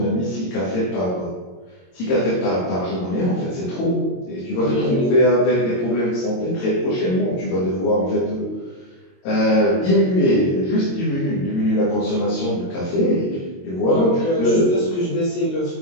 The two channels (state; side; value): late; right; 22 ms